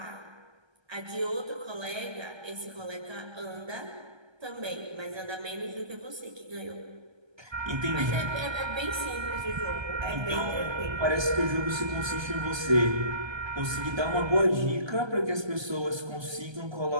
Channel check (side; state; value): left; late; 1.3 ms